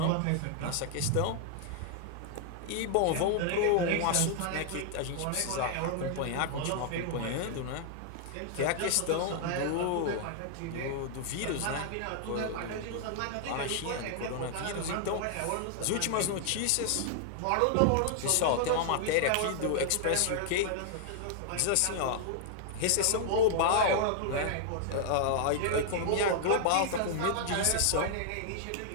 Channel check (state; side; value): different; both; correlation -0.01